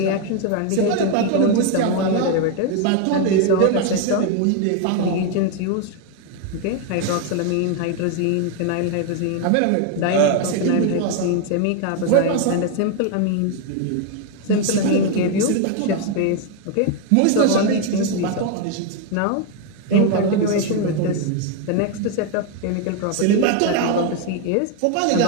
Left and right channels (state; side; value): different; both; correlation 0.01